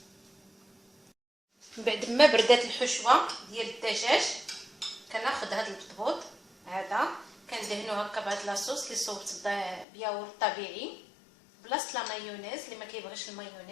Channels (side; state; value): right; drops out; at 9.9 s